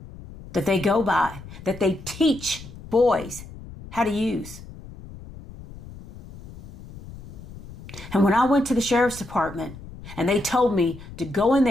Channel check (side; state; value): left; noise; rumble, 16 dB below the sound